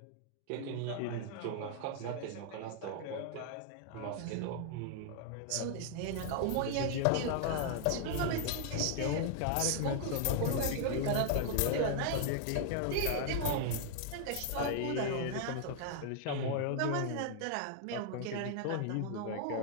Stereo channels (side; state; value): both; different; correlation 0.00